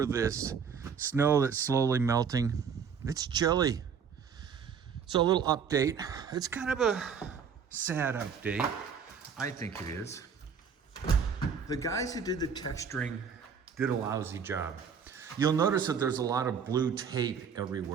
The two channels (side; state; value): left; quieter; 6.7 dB